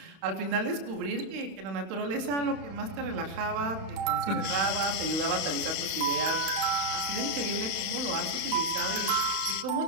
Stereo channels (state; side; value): late; left; 31 ms